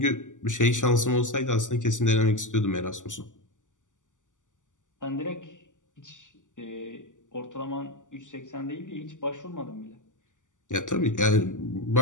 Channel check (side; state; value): right; late; 0.87 ms